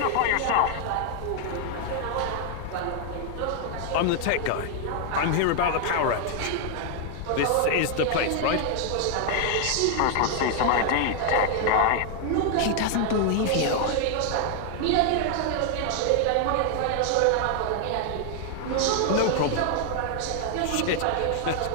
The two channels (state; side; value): different; both; correlation 0.00